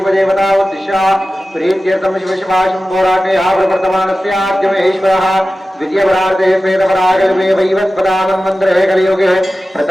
ఉద్దిశ్య ప్రీత్యర్థం శివ శివాశంభోరాటే ఆప్రవర్తమానస్యాద్యమేశ్వరः ద్వితీయపరార్ధే శ్వేతపరాగల్పే వైవస్పదామన్వంతరే కలియుగే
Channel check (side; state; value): both; normal; correlation 0.95